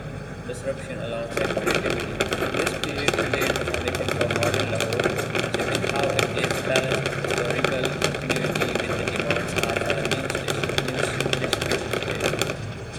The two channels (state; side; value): identical; both; correlation 1.00